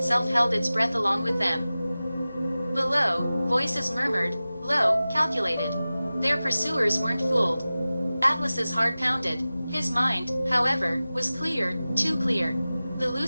held its breath along with them. Below, voices murmured, low, calculated. Their pursuers weren't fooled. Atlas's heart pounded. His mind, however, was clear, too clear. The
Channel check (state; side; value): inverted; both; correlation -0.97